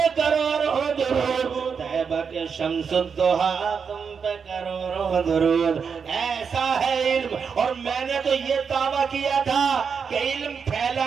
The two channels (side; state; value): left; quieter; 6.2 dB